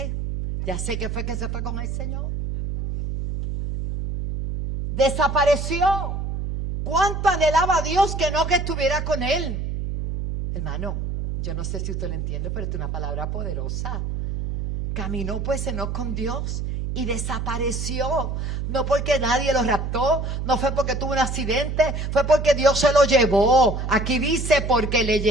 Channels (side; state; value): right; noise; hum, 3 dB below the sound